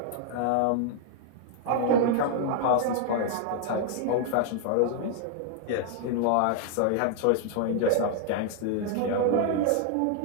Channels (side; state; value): both; different; correlation 0.00